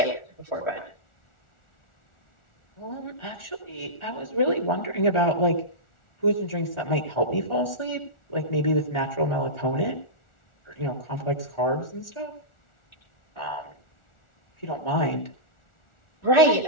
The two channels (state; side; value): late; right; 1.4 ms